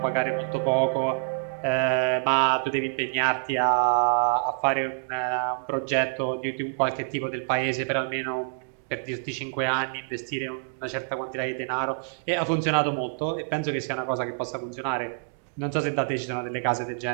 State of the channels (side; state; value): left; silent; digital silence